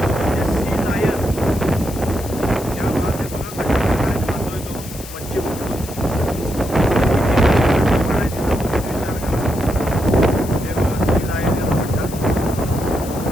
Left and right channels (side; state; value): left; noise; hiss, 14 dB below the sound